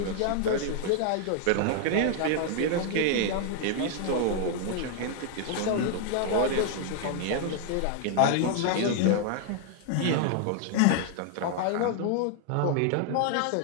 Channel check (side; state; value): both; different; correlation 0.00